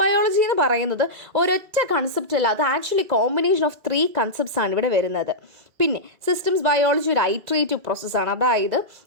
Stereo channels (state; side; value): late; left; 2.2 ms